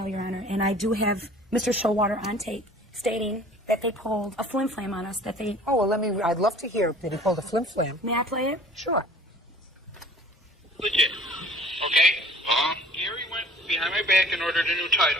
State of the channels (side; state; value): both; normal; correlation 0.49